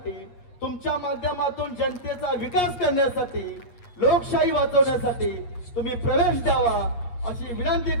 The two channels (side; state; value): right; late; 8.4 ms